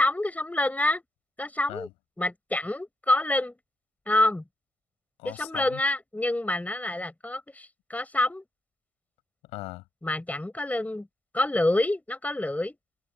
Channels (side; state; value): both; normal; correlation 0.82